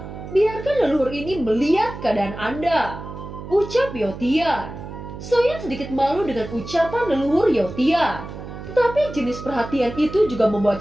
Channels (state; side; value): noise; right; hum, 11 dB below the sound